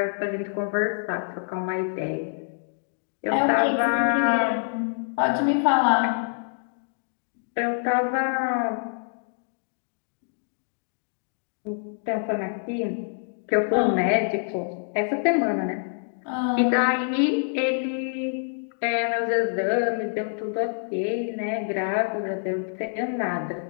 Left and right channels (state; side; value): silent; right; digital silence